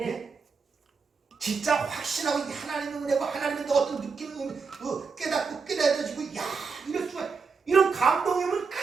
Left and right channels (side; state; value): left; quieter; 5.0 dB